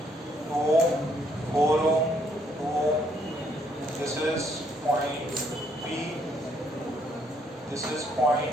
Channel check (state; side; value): normal; both; correlation 0.69